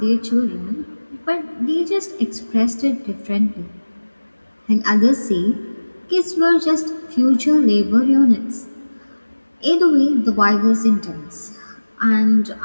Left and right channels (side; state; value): both; inverted; correlation -1.00